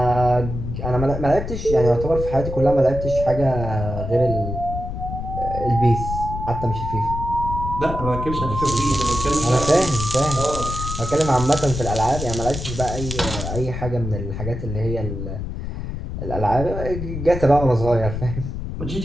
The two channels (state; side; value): noise; left; rumble, 6 dB below the sound